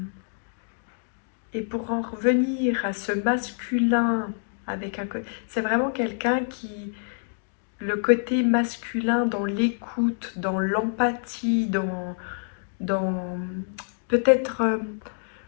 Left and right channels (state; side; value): silent; right; digital silence